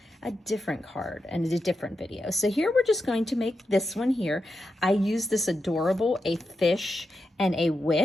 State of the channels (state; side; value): normal; both; correlation 0.88